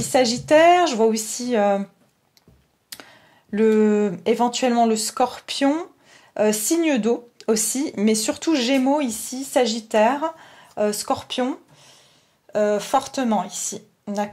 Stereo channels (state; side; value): identical; both; correlation 1.00